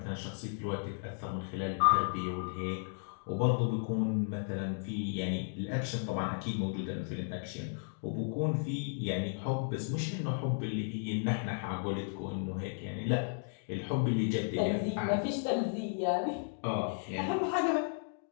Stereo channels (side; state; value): right; silent; digital silence